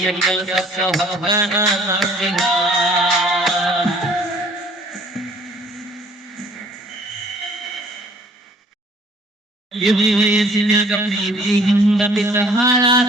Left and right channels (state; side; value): normal; both; correlation 0.56